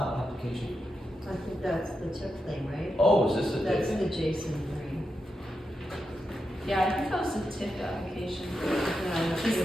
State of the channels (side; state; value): both; normal; correlation 0.87